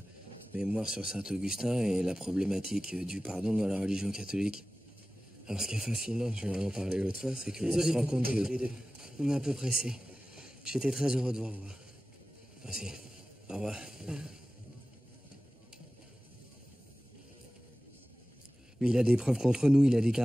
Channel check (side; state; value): both; normal; correlation 0.96